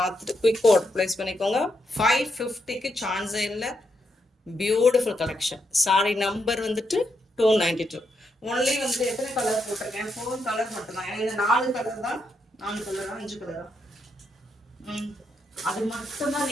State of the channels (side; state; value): both; normal; correlation 0.81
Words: குயிக் ஆர்டர் ப்ளேஸ் பண்ணிக்கோங்க. 550க்கு சான்ஸே இல்லை. Beautiful collection. சாரி நம்பர் வந்துட்டு 292. ஒன்லி வந்து எத்தனை கலர் போட்டிருக்கேன்? 4 கலர் மட்டும்தான். ஏன்னா இந்த 4 கலர் தான், 4 கலரா 5 கலரா, அது மட்டும்தான்